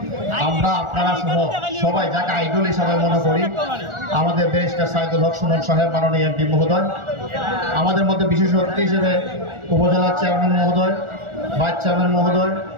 সহ সবাই যাকে আইডল হিসাবে মনে করি, আমাদের ব্যারিস্টার সাইদুল হক সুমন সাহেব, মাননীয় এমপি মহোদয়, আমাদের মধ্যে বিশেষ অতিথি হিসেবে উপজেলা চেয়ারম্যান মহোদয়, ভাইস চেয়ারম্যান মহোদয়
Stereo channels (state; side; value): late; left; 1.4 ms